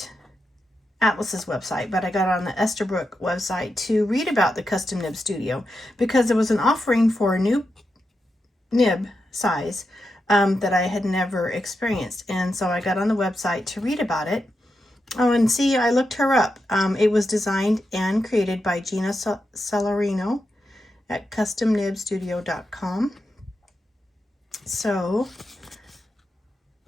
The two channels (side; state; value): both; normal; correlation 0.87